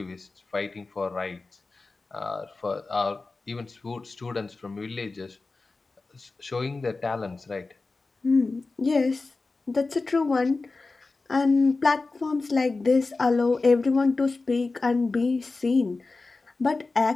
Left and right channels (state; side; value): quieter; right; 3.7 dB